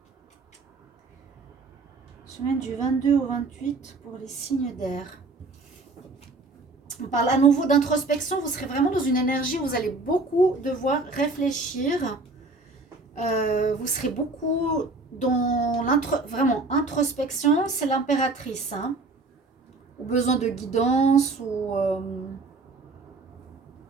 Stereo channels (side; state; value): left; quieter; 3.5 dB